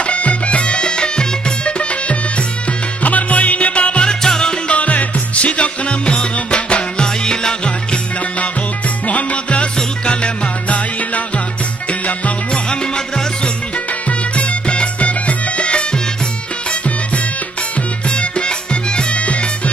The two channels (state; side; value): quieter; left; 3.1 dB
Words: আমার মঈন বাবার চরণ ধরে শিখক নামের বাবা লা ইলাহা ইল্লাল্লাহ মুহাম্মদ রাসূল কালেমা লা ইলাহা ইল্লাল্লাহ মুহাম্মদ রাসূল